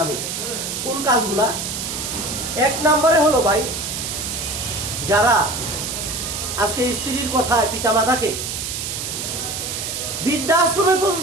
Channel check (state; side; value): noise; right; hiss, 4 dB below the sound